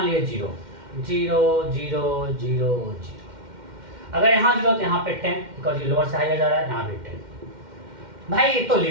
लिए 0 0 0 0 0, अगर यहाँ 0 तो यहाँ पे 10, बिकॉज ये लोअर से हायर जा रहा है, यहाँ पे 10। भाई ये तो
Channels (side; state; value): left; late; 2.1 ms